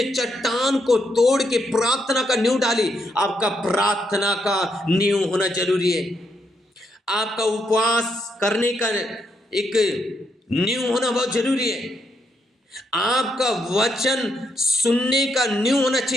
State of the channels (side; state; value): both; normal; correlation 0.78